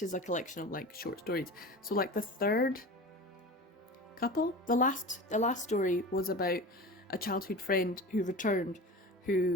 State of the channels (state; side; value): normal; both; correlation 0.33